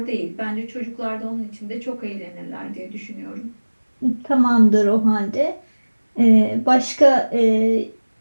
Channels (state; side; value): inverted; both; correlation -1.00